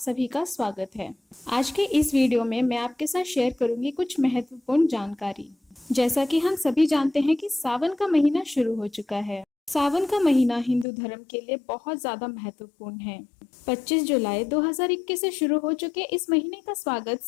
का स्वागत है। आज के इस वीडियो में मैं आपके साथ शेयर करूंगी कुछ महत्वपूर्ण जानकारी। जैसा कि हम सभी जानते हैं कि सावन का महीना शुरू हो चुका है। सावन का महीना हिंदू धर्म के लिए बहुत ज्यादा महत्वपूर्ण है। 25 जुलाई 2021 से शुरू हो चुके इस महीने का स्वागत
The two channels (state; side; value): drops out; right; at 10.9 s